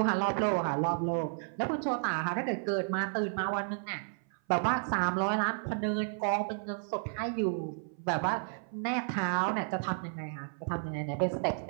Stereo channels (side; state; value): left; silent; 56 dB below the other